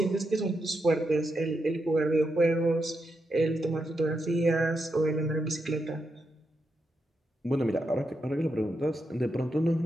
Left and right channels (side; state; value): both; normal; correlation 0.84